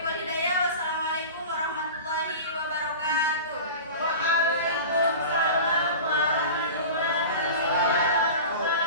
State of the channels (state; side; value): inverted; both; correlation -0.34